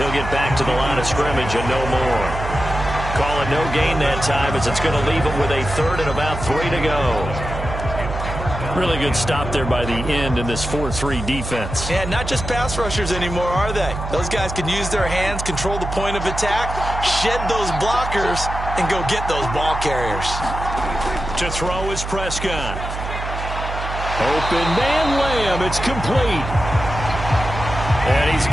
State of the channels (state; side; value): noise; right; hum, 6 dB below the sound